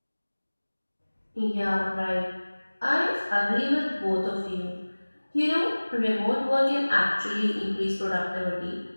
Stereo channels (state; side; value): inverted; both; correlation -1.00